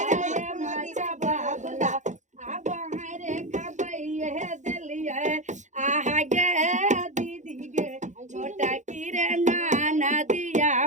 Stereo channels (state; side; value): late; left; 0.35 ms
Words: है माचा बाबला अब हरे खबैये दिलिया आहा गे दीदी गे छोटा किरे नाना दिया